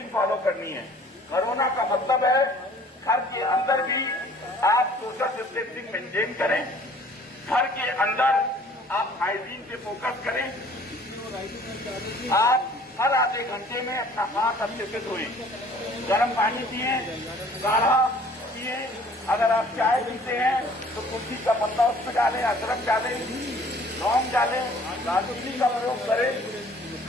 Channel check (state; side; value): normal; both; correlation 0.54